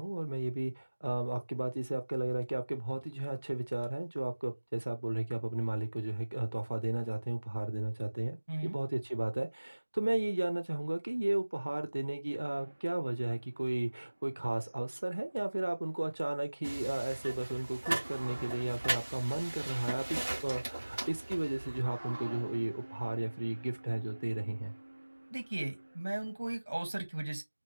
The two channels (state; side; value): inverted; both; correlation -1.00